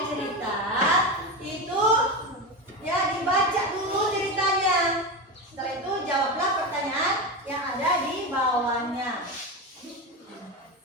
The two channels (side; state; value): both; normal; correlation 0.18